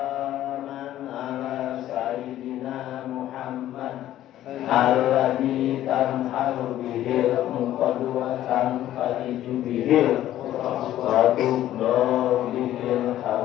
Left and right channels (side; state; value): right; quieter; 13.0 dB